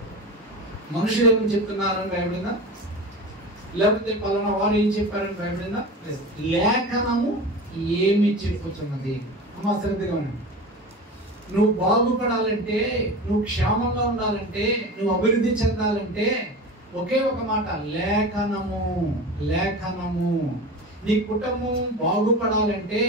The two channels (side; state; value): both; normal; correlation 0.31